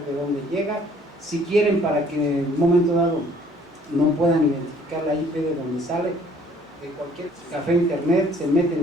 de dónde llega. Si quieren, para que en un momento dado no puedan identificar la IP de donde sale, de cualquier café internet, se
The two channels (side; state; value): both; normal; correlation 0.58